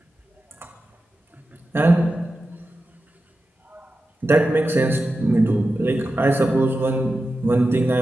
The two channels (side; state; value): both; normal; correlation 0.92